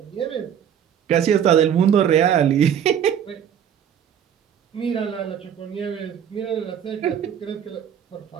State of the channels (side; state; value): left; quieter; 8.9 dB